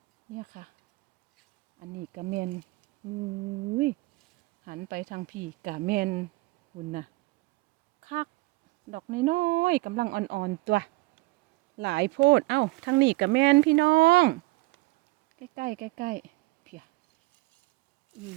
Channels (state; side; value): quieter; left; 22.1 dB